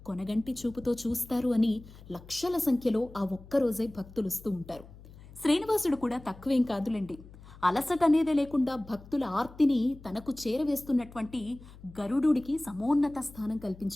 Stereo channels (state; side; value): noise; left; hum, 19 dB below the sound